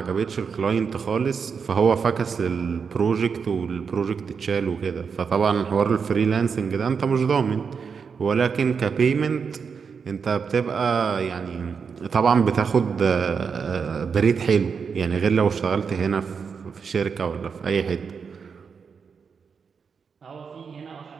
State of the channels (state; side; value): quieter; left; 6.0 dB